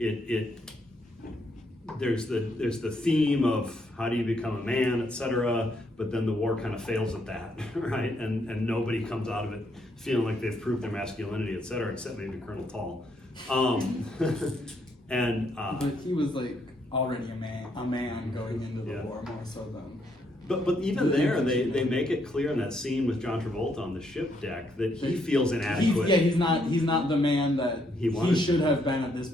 there's the theme of how do you become a man, etc. But then the war kind of fails at that, right? And nobody comes out of it feeling like they've proved their masculinity, etc. Except maybe Colonel Tall. But he was like already a man going into the war more so than. But even there, they make it clear in that scene with John Travolta on the ship deck that he feels inadequate. He's not the man that he should have been at this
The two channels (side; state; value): both; normal; correlation 0.74